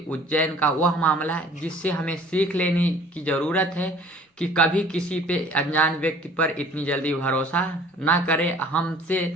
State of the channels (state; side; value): normal; both; correlation 0.51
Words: उज्जैन का वह मामला जिससे हमें सीख लेने की ज़रूरत है कि कभी किसी पे अनजान व्यक्ति पर इतनी जल्दी भरोसा ना करें। हमसे